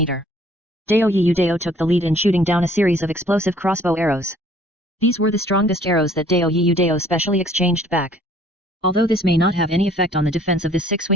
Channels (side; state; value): both; normal; correlation 0.57